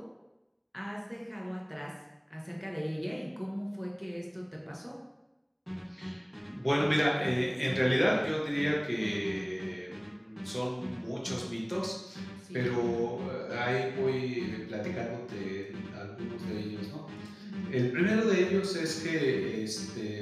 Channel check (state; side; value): identical; both; correlation 1.00